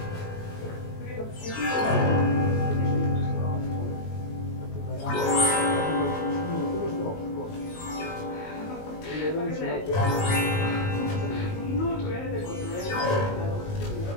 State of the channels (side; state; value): right; late; 19 ms